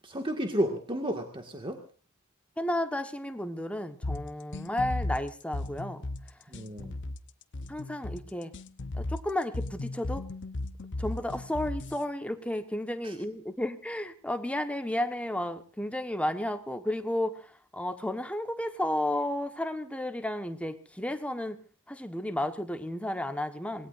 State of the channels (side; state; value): both; normal; correlation 0.86